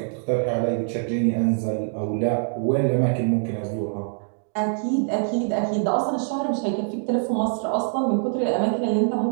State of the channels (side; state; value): left; silent; digital silence